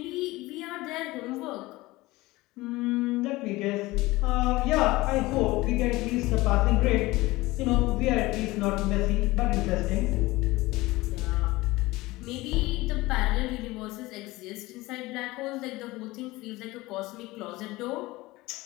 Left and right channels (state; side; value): quieter; right; 20.1 dB